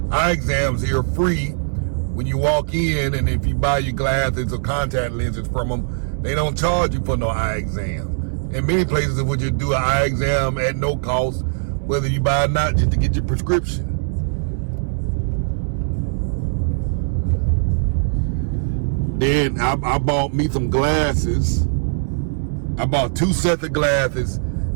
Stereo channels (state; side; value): silent; left; 65 dB below the other